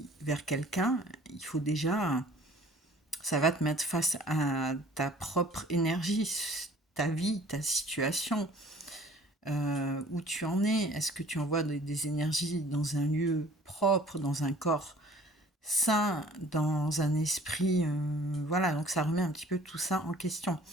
vers quelqu'un, il faut déjà, ça va te mettre face à ta propre énergie, ta vie, ta situation, où tu en es. Est-ce que tu envoies des énergies dans un lieu propre, dans un corps sain, dans un esprit, voilà, donc ça remet un petit peu tout ça en question.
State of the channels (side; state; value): both; normal; correlation 0.51